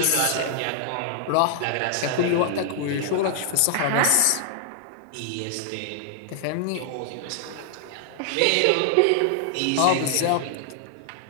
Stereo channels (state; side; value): different; both; correlation -0.01